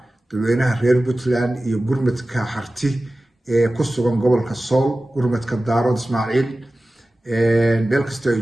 dadweynaha reer Puntland iyo gurmadka harti ee ku sugan gobolka Sool gurmadka Daarood Ismaaciil meel kasta ay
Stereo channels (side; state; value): both; normal; correlation 0.96